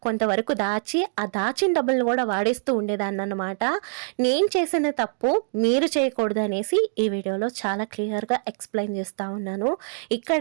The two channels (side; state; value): left; silent; digital silence